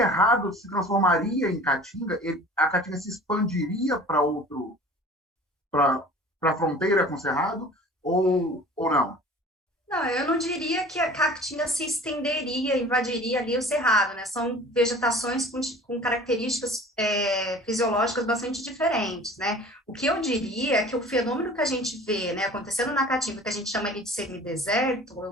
se transformaria em caatinga, a caatinga se expandiria para a fronteira com o cerrado, ou não? Não, eu não diria que a caatinga se estenderia, invadiria ali o cerrado, né? São vegetações com características fisiológicas bastante diferentes, né? O que eu diria é que o fenômeno que a gente vê, né, acontecendo na caatinga, que a gente chama ali de semideserto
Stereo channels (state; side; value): normal; both; correlation 0.44